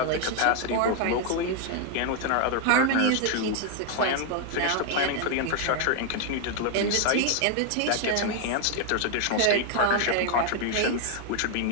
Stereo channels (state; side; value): different; both; correlation 0.00